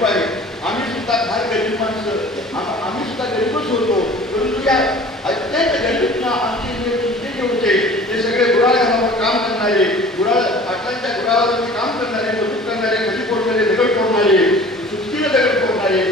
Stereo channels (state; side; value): normal; both; correlation 0.45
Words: आहे. आम्ही सुद्धा फार गरीब माणसं, आम्ही सुद्धा गरीबच होतो. परंतु या अत्यंत गरीबना आमचे जे होते ते सगळे गुराळ्यावर काम करणारे, पाटलांच्या गुराळावरती काम करणारे, मजूर करणारे, खडी फोडणारे, दगड फोडणारे, सुस्तीने दगड फोडणारे,